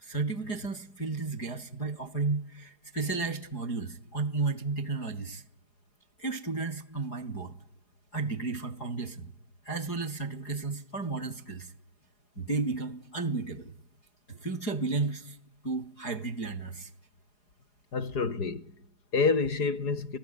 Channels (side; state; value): right; late; 4.8 ms